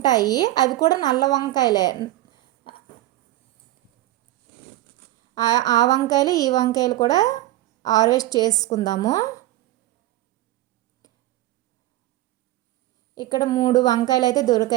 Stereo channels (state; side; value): quieter; left; 16.0 dB